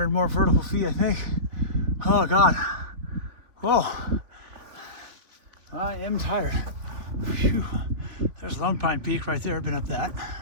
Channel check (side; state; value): left; late; 3.5 ms